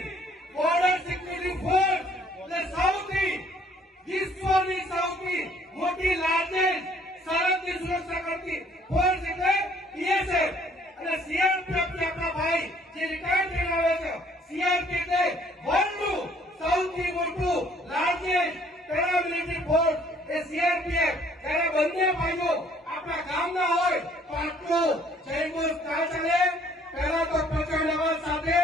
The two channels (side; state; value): both; normal; correlation 0.60